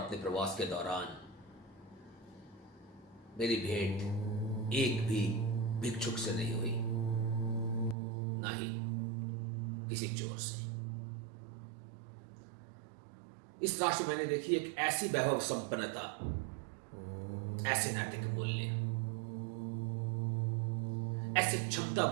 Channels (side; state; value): left; drops out; at 8.0 s